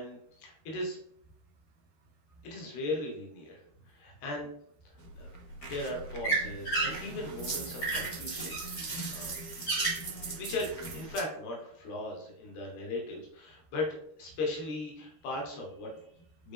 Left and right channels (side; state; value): right; late; 13 ms